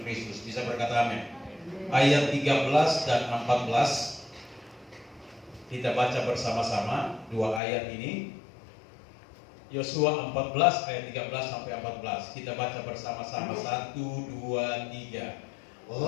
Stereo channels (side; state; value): right; drops out; at 7.6 s